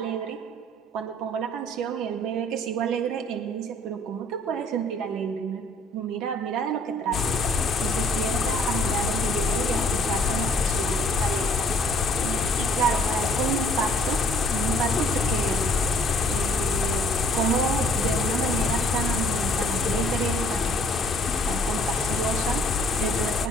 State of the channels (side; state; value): both; normal; correlation 0.58